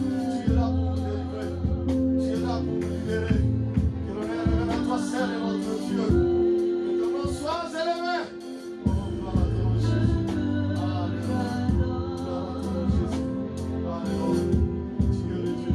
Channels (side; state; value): both; identical; correlation 1.00